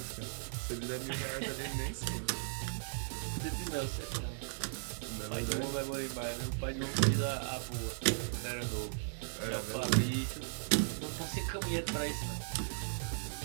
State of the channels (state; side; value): silent; left; 53 dB below the other